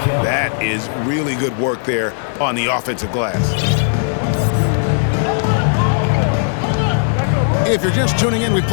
That is really good work there on the offensive glass. If you're just tuning in, we've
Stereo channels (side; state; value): right; silent; 57 dB below the other